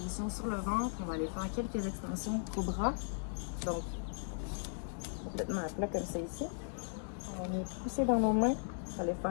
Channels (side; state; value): right; silent; digital silence